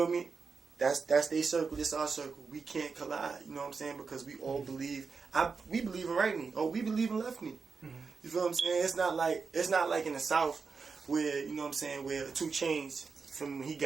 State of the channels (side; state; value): left; quieter; 5.0 dB